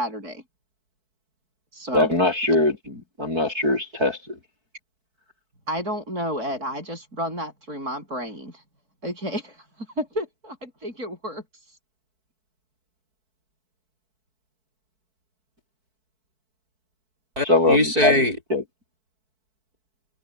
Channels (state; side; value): late; left; 4.6 ms